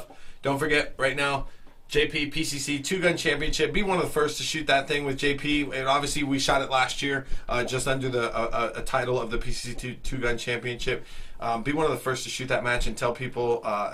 Don't forget, right now, JP PCC two-gun championship. Be one of the first to shoot that thing with JP. And obviously, we shot it last year, just under the a title of the PCC two-gun championship. Be one of the first to shoot that match and tell people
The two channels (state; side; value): identical; both; correlation 1.00